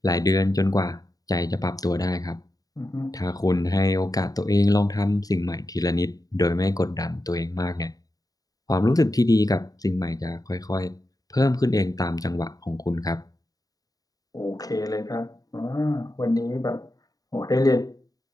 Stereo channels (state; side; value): late; right; 0.18 ms